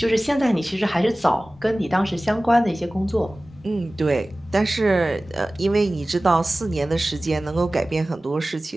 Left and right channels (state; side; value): normal; both; correlation 0.97